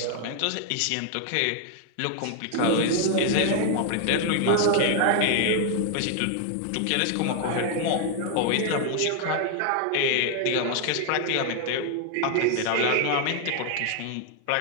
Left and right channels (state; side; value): different; both; correlation 0.00